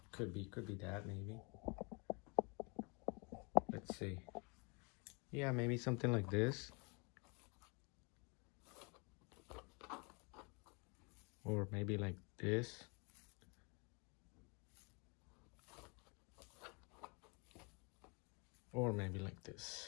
could be that maybe. Let's see. Yeah, maybe something like this. Or maybe like this. Or maybe like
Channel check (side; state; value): right; quieter; 32.2 dB